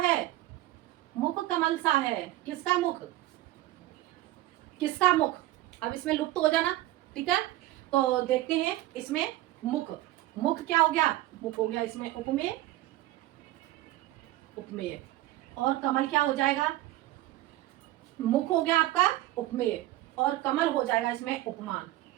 मुख कमल सा है। किसका मुख? किसका मुख? अब इसमें लुप्त हो जाना। ठीक है, तो देखते हैं इसमें मुख। मुख क्या हो गया? मुख हो गया इसमें उपमेय। उपमेय और कमल क्या हो जाएगा? मुख हो गया आपका उपमेय और कमल हो जाएगा इसमें उपमान।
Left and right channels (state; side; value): quieter; left; 16.4 dB